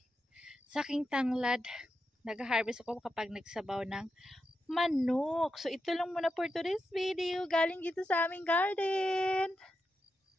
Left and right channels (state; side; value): normal; both; correlation 0.87